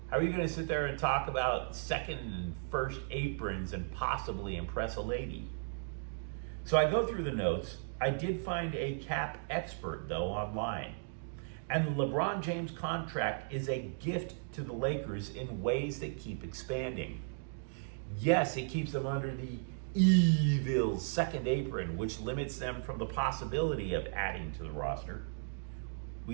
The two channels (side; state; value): left; silent; digital silence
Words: How are you going to sit there and talk about second and first aprons and possibly impress a lady? So I go through the notes. I did find a cap expert, though, online. And the LeBron James contract is a gift to the Lakers in ways that keep expanding. Yes, it keeps them under the evil second apron, which limits them from the possibility of adding to the roster.